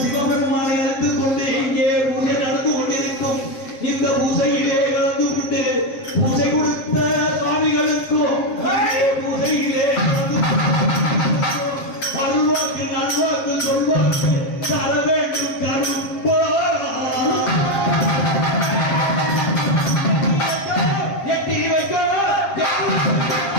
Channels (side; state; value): right; late; 7.5 ms